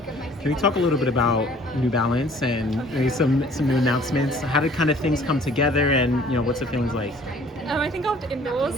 Can you talk a little bit about New Balance and maybe some new announcements? How did kind of things come together, and what's the feelings like? I think after indoors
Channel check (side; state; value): both; normal; correlation 0.54